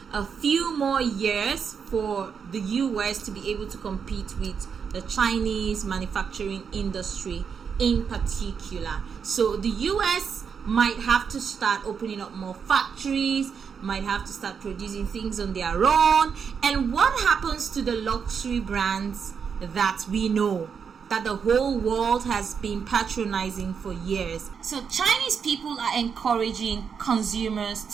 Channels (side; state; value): left; quieter; 6.5 dB